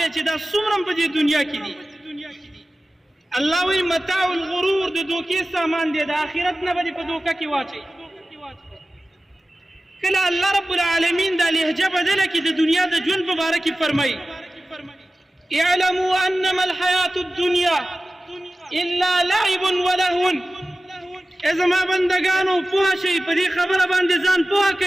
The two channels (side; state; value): both; normal; correlation 0.96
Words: چې دا څومره په دې دنیا کې دي، الله وایي متاع الغرور، د دوکې سامان دی، د آخرت نه به دې په دوکه کې واچوي. کله الله رب العالمین دا لهجه بدله کړي د دنیا د ژوند په باره کې فرمایي: اعلموا انما الحیات الدنیا الا لعب ولهو. ای زما بندګانو پوه شئ، په دې خبره باندې ځان پوه